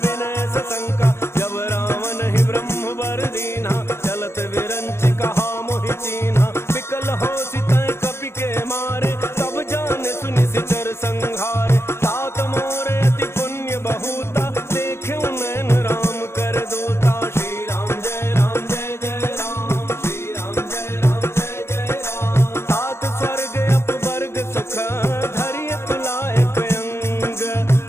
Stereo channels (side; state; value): right; late; 0.12 ms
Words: विनय सशंका, जब रावण ही ब्रह्म वर दीन्हा, चलत विरंच कहा मोहि चीन्हा, विकल हो सितै कपि के मारे, तब जाने सुनि सिचर संहारे, तात मोरे अति पुण्य बहुता, देखे नैन राम कर दूता, श्री राम जय राम जय जय राम, श्री राम जय राम जय जय राम, तात स्वर्ग अपवर्ग सुख, धरिय तुलाए अंग,